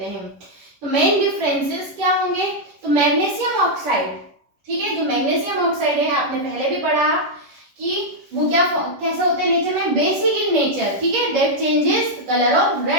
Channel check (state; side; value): late; left; 11 ms